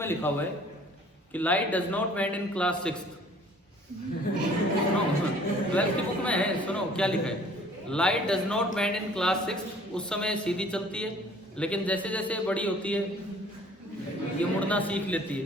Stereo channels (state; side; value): normal; both; correlation 0.54